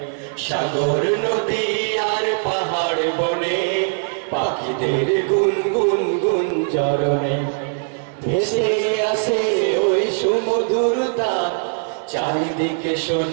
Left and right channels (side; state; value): left; silent; digital silence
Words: সাগর নদী আর পাহাড় বনে পাখিদের গুনগুন গুঞ্জরণে। ভেসে আসে ওই সুমধুর তান, চারিদিকে